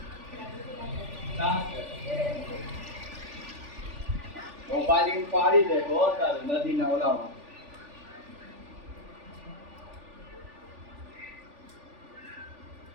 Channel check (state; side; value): late; left; 3.4 ms